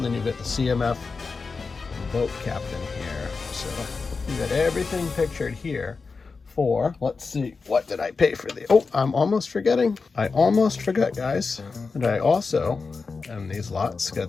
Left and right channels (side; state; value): right; quieter; 4.5 dB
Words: then you get the CMF boat captain here. So you got everything pictured here for, let's see, what did I pay for the, oh, I'm almost forgetting. I almost forgot, guys. And I also, in these lots,